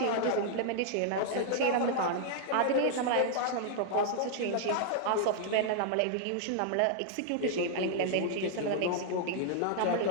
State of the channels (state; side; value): different; both; correlation -0.01